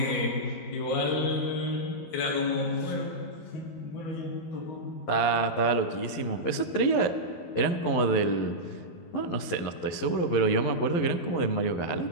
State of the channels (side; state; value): right; late; 11 ms